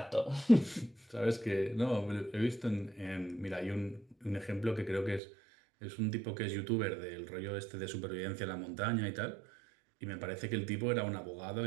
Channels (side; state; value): left; drops out; at 5.2 s